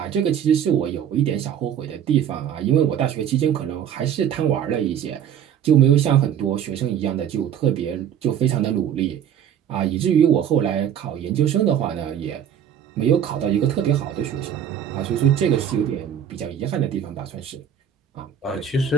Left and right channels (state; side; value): quieter; left; 9.2 dB